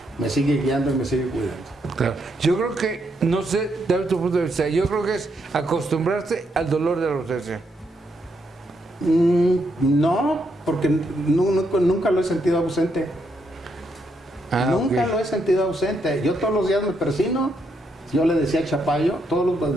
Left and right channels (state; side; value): normal; both; correlation 0.78